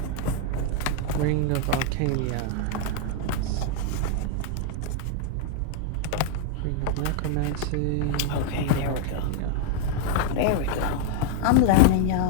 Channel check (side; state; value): both; different; correlation 0.00